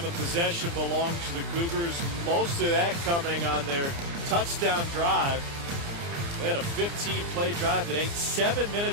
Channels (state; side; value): late; left; 29 ms